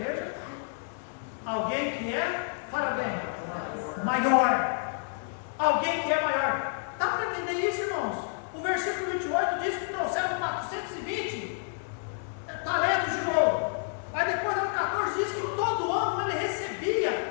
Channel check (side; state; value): right; silent; digital silence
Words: Alguém que é, fala bem, maior. Alguém que é maior. Dá para entender isso, irmãos? O versículo 28 diz que trouxeram 420 talentos de ouro. Aí depois no 14 diz que todo ano ele recebia,